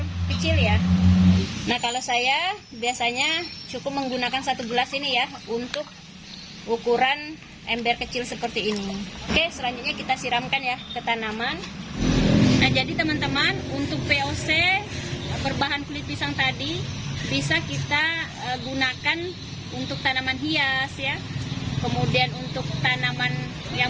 kecil ya. Nah, kalau saya biasanya cukup menggunakan 1 gelas ini ya, untuk ukuran ember kecil seperti ini. Oke, selanjutnya kita siramkan ya ke tanaman. Nah, jadi teman-teman, untuk POC berbahan kulit pisang tadi bisa kita gunakan untuk tanaman hias ya, kemudian untuk tanaman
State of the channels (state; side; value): identical; both; correlation 1.00